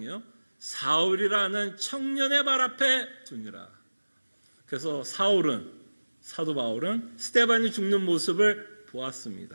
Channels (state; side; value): inverted; both; correlation -1.00